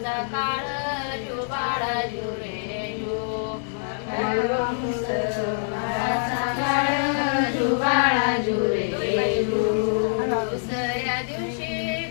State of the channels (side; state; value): right; silent; digital silence